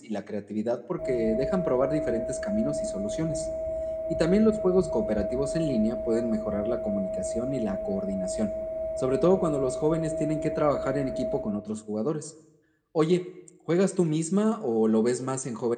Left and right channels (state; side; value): identical; both; correlation 1.00